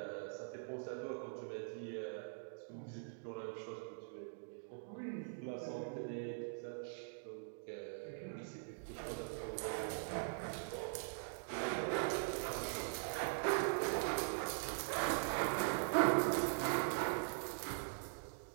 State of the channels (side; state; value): left; silent; digital silence